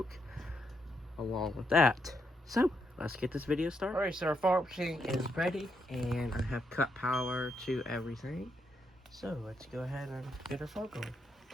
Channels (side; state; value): both; normal; correlation 0.79